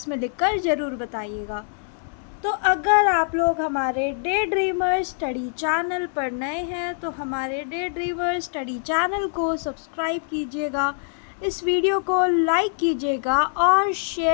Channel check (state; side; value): silent; right; 63 dB below the other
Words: में लिखकर ज़रूर बताइएगा। तो अगर आप लोग हमारे डे ड्रीमर स्टडी चैनल पर नए हैं तो हमारे डे ड्रीमर स्टडी चैनल को सब्सक्राइब कीजिएगा, इस वीडियो को लाइक कीजिएगा और